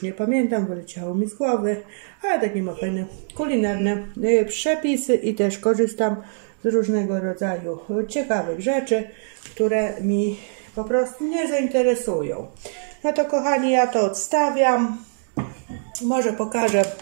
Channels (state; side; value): silent; left; digital silence